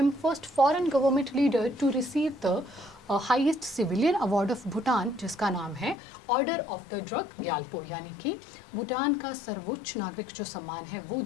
first foreign government leader to receive the highest civilian award of Bhutan, जिसका नाम है order of the Druk Gyalpo, यानी कि भूटान का सर्वोच्च नागरिक जो सम्मान है वो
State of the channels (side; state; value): right; drops out; at 6.0 s